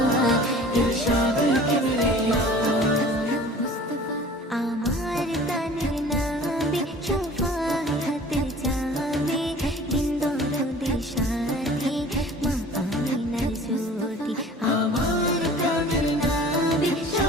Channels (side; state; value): both; normal; correlation 0.46